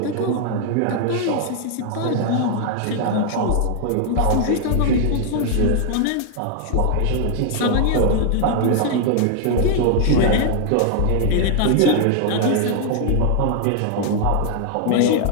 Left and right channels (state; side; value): different; both; correlation 0.00